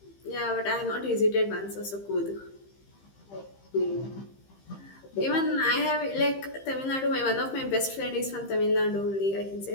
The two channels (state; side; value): late; right; 15 ms